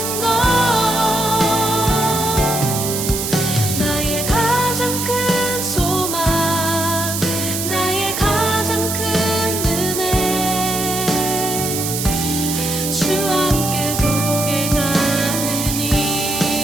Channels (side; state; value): right; noise; hiss, 3 dB below the sound